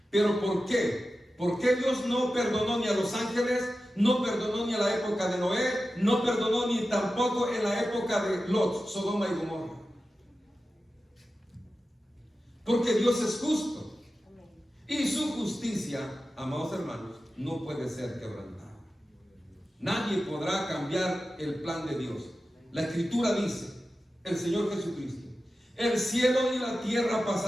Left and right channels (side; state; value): both; normal; correlation 0.93